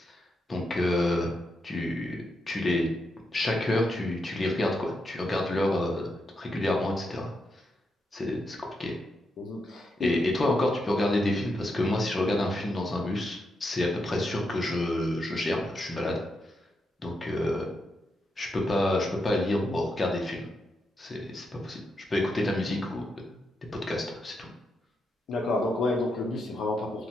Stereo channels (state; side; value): normal; both; correlation 0.83